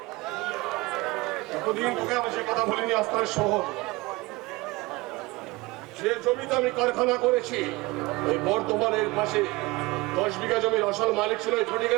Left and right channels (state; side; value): quieter; left; 22.5 dB